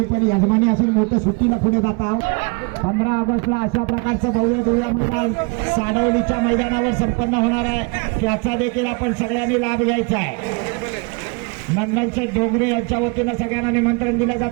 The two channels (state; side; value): quieter; left; 30.9 dB